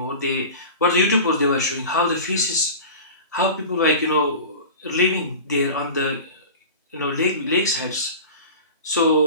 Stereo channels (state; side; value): inverted; both; correlation -0.34